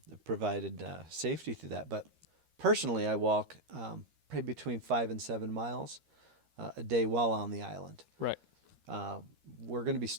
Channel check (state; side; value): late; left; 13 ms